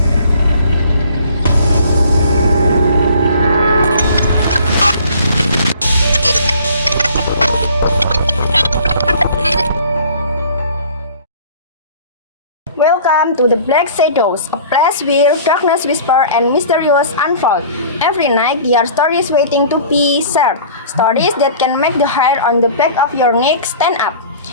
Welcome to the Black Shadows, a place where darkness whisper and mysterious unfold. Every night, there are stories waiting to be shared. Stories that can make the hair on the back of your neck stand up,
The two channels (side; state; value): both; inverted; correlation -0.48